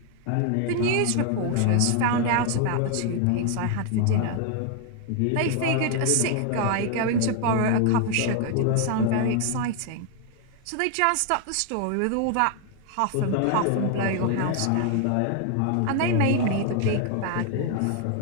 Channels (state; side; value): different; both; correlation 0.00